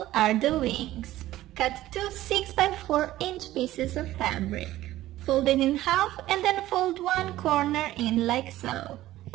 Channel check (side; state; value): left; quieter; 15.2 dB